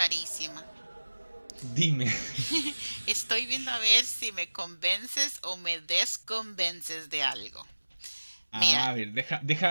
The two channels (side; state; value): both; inverted; correlation -1.00